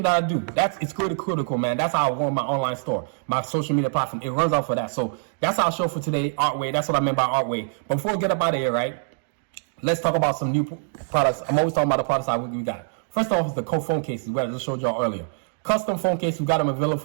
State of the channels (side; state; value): left; silent; digital silence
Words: that I do. It's critical, man. That's how I run my online store, my social media platform. It runs out for that. So that's our show for today, Artway. That's what I meant by Artway. But before we get up out of here, right, let's talk about some new products. I'm always talking about the products we got. First off is the phone cases, where I just showed y'all earlier. Custom phone case, we got them available